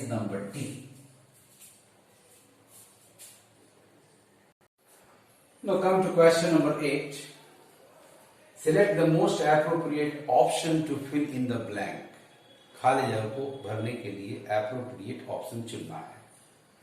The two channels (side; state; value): both; identical; correlation 1.00